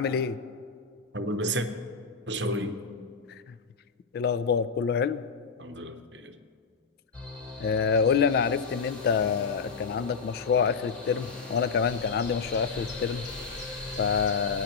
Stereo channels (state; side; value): quieter; right; 5.2 dB